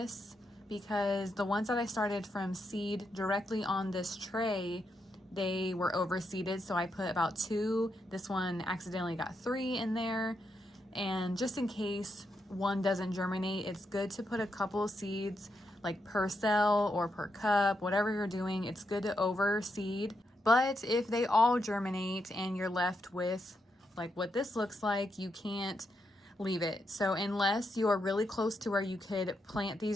because the ones that I started from seed directly on this tray, they were overseeded, so I put about 2. This one accidentally got 3 in there, and just in case one doesn't germinate, it's good to put a couple of seeds like per cell or per cup, whatever you're doing. It's good to overseed. But if they all germinate and you're left with like what this looks like, you can't leave it. So unless you are really close to where you could plant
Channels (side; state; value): both; normal; correlation 0.82